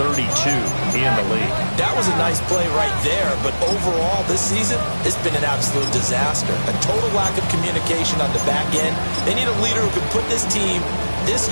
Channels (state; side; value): inverted; both; correlation -1.00